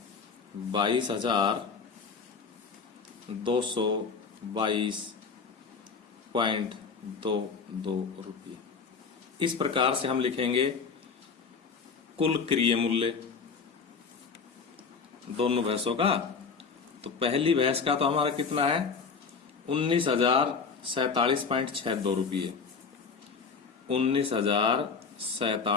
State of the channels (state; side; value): quieter; right; 5.2 dB